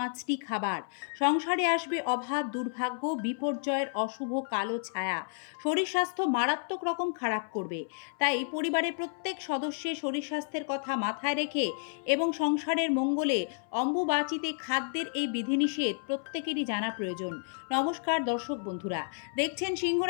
খাবার। সংসারে আসবে অভাব, দুর্ভাগ্য, বিপর্যয়ের অশুভ কালো ছায়া। শরীর স্বাস্থ্য মারাত্মক রকম খারাপ করবে। তাই পরিবারের প্রত্যেক সদস্যের শরীর স্বাস্থ্যের কথা মাথায় রেখে এবং সংসারের মঙ্গলে অম্বুবাচীতে খাদ্যের এই বিধিনিষেধ প্রত্যেকেরই জানা প্রয়োজন। নমস্কার দর্শক বন্ধুরা, দেখছেন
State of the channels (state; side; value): silent; right; 57 dB below the other